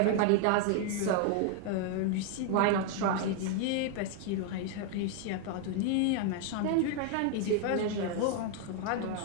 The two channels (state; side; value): different; both; correlation 0.00